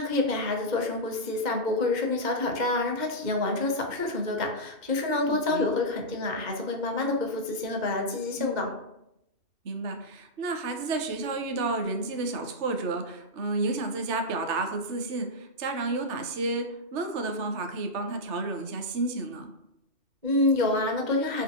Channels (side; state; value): left; late; 2.7 ms